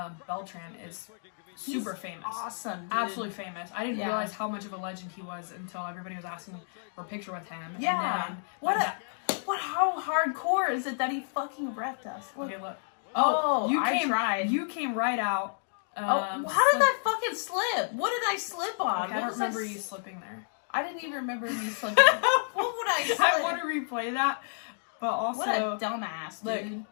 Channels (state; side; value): silent; right; digital silence